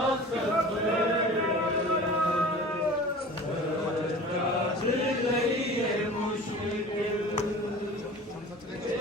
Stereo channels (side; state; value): both; normal; correlation 0.40